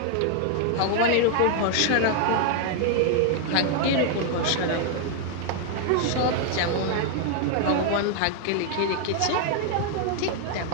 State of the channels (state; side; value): different; both; correlation 0.00